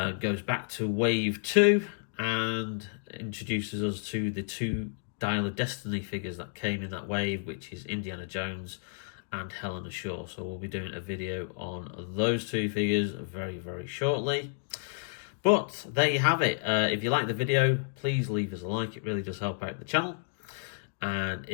goes back to Wave 2 and introduces us to the 2 Dial of Destiny figures that came in that wave, which is Indiana Jones and Helena Shaw. So we'll be doing a video on those 2 figures very, very shortly. But there you have it. If you like the video, please leave us a like. It really does help out the channel. And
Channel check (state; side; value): silent; right; digital silence